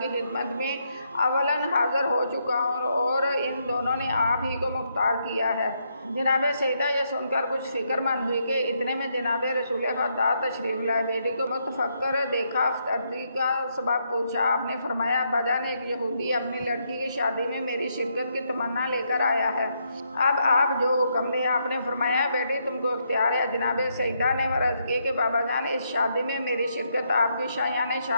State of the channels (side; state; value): both; inverted; correlation -0.77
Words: खिदमत में अवलन हाज़िर हो चुका हूँ और इन दोनों ने आप ही को मुख्तार किया है। जनाब सईदा ये सुनकर कुछ फ़िक्रमंद हुई कि इतने में जनाब रसूल खुदा तशरीफ़ लाए। बेटी को मुतफक्कर देखा, अर्ज़ी का सबब पूछा। आपने फरमाया, अब्बाजान एक यहूदी अपनी लड़की की शादी में मेरी शिरकत की तमन्ना लेकर आया है, अब आप जो हुक्म दे। आपने फरमाया, बेटी तुमको इख्तियार है। जनाब सईदा ने अर्ज़ की कि बाबा जान इस शादी में मेरी शिरकत आपकी शायान